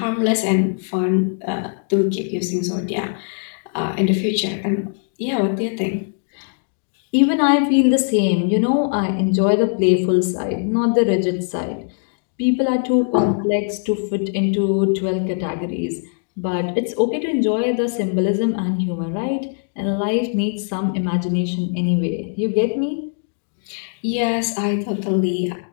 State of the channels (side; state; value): right; silent; digital silence